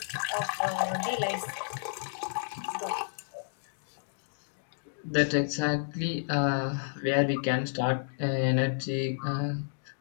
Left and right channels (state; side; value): silent; right; digital silence